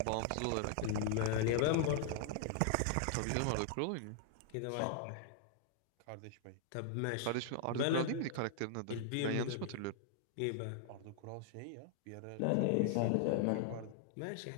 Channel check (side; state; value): both; different; correlation -0.01